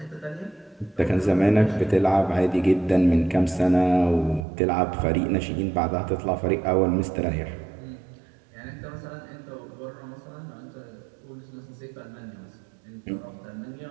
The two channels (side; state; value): left; drops out; at 4.5 s